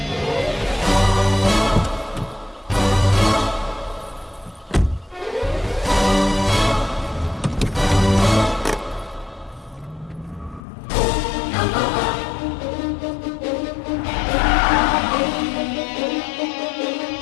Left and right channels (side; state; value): right; drops out; at 10.6 s